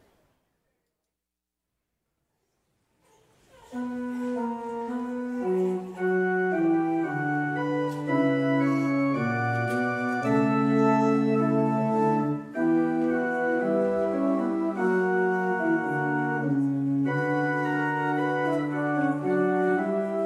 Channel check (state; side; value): identical; both; correlation 1.00